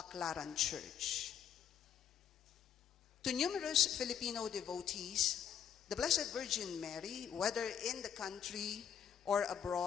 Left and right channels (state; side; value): quieter; right; 8.7 dB